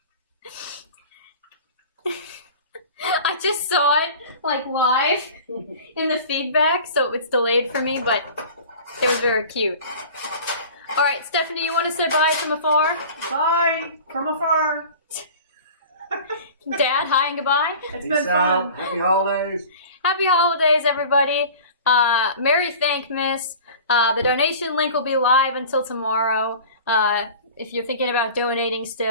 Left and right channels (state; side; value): inverted; both; correlation -0.40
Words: I just saw it like live in the feedback, so it's delayed for me, but it was very cute. All right, Stephanie, you want to say bye from afar? Bye from afar. Dad, hi and goodbye. It's Peace been out. fun. Happy holidays. Happy holidays, everybody. Merry THANKMAS. The donation link will be live until tomorrow if you're thinking about donating